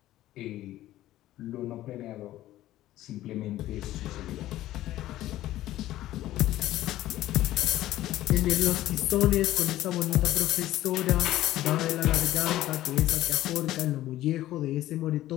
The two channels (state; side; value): quieter; right; 14.7 dB